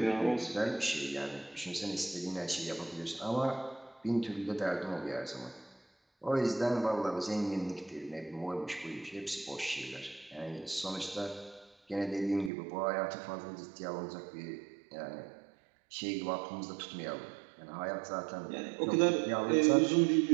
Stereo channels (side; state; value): left; drops out; at 12.5 s